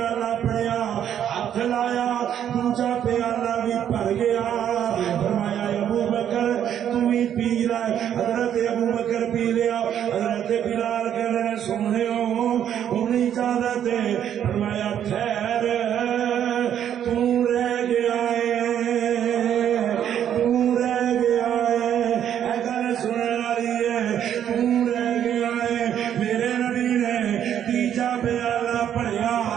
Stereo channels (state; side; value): quieter; left; 9.8 dB